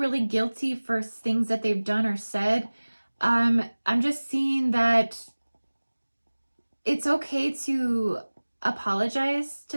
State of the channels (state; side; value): inverted; both; correlation -1.00